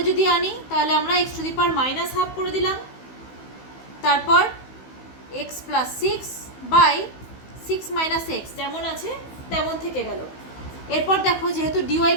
যদি আনি তাহলে আমরা x to the power minus half করে দিলাম। তারপর x plus 6 by 6 minus x যেমন আছে তেমন থেকে গেল। এরপর দেখো যেহেতু ডিওয়াই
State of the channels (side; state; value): right; late; 15 ms